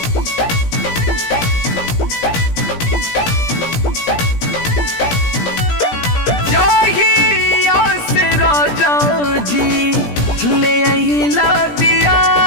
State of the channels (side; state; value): right; late; 17 ms